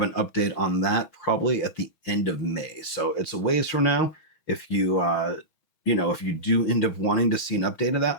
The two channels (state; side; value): late; right; 6.3 ms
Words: an update on that probably at the end of May. So it's a ways from now. If you, if you do end up wanting to see an update of